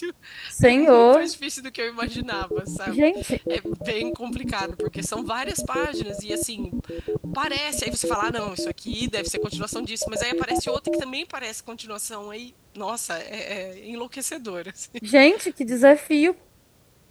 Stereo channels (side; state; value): both; identical; correlation 1.00